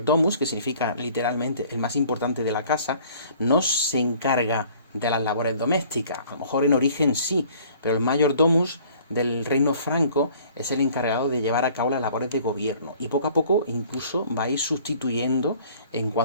que significa literalmente el más importante de la casa, no se encarga de las labores domésticas. A lo mejor en origen sí, pero el mayordomus del reino franco es el encargado de llevar a cabo las labores de gobierno, y poco a poco incluso va a ir sustituyendo en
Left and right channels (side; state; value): both; inverted; correlation -0.53